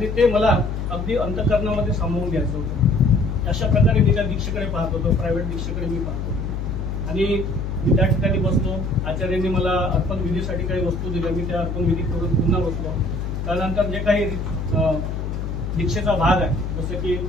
ते मला अगदी अंतःकरणामध्ये सामावून घ्यायचं होतं. अशा प्रकारे मी त्या दीक्षेकडे पाहत होतो, प्रायव्हेट दीक्षेकडे मी पाहत होतो. आणि मी त्या ठिकाणी बसलो. आचार्यांनी मला अर्पण विधीसाठी काही वस्तू दिल्या, मी त्या अर्पण विधी करून पुन्हा बसलो. त्यानंतर जे काही दीक्षेचा भाग आहे, जसं की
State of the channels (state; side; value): noise; left; hum, 3 dB below the sound